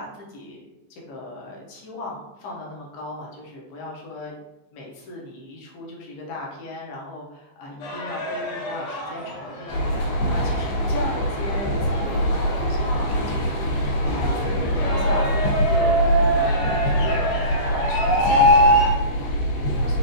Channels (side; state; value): right; late; 15 ms